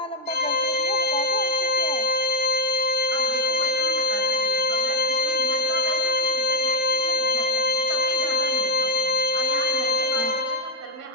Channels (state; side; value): normal; both; correlation 0.05